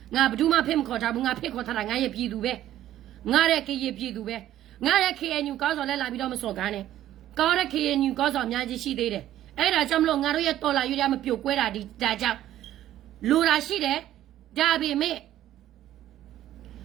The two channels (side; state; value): left; quieter; 12.8 dB